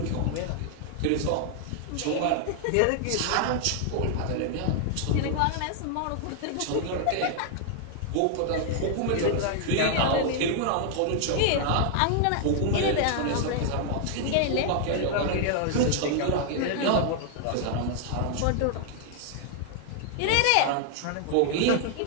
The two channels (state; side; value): different; both; correlation 0.00